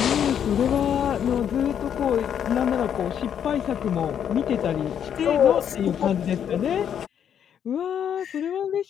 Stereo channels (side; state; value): right; quieter; 8.8 dB